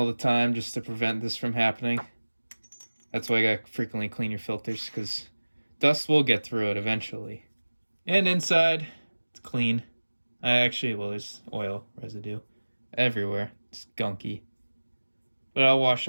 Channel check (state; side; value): inverted; both; correlation -1.00